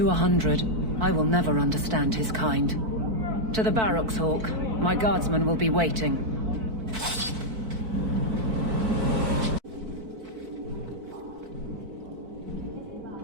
100, I will never understand his kind. To the barracks, Hawk. My guardsmen will be waiting.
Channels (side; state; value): left; late; 4.5 ms